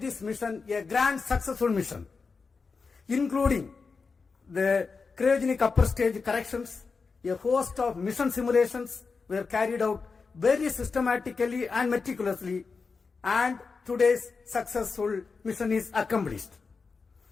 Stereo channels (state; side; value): quieter; right; 4.7 dB